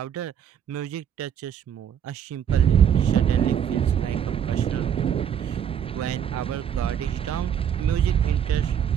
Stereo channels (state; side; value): quieter; left; 8.8 dB